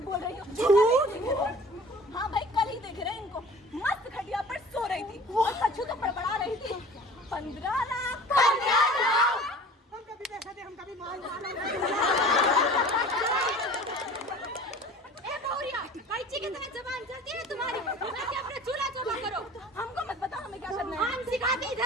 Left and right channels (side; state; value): both; normal; correlation 0.44